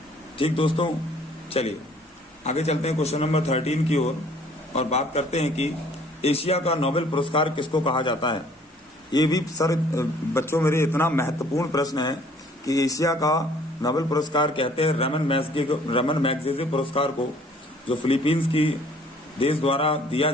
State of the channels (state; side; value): normal; both; correlation 0.57